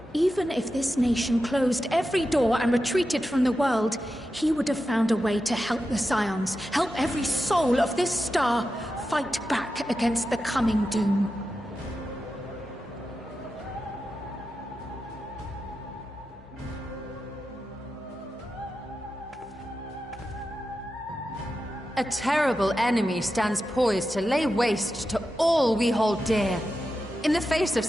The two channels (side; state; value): both; normal; correlation 0.90